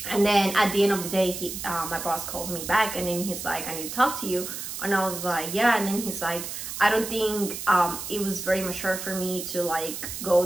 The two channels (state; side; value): noise; right; hiss, 7 dB below the sound